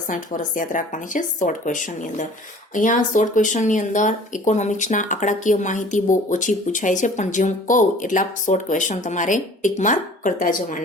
વર્ષ યાદ રાખવાની છે શોર્ટ ક્વેશ્ચનની અંદર. અહીંયા શોર્ટ ક્વેશ્ચનની અંદર ઇકોનોમિક્સના આંકડાકીય માહિતી બહુ ઓછી પૂછાય છે, પણ જે હું કહું એટલા શોર્ટ ક્વેશ્ચન તમારે ટીક માર્ક કરતા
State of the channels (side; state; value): both; normal; correlation 0.48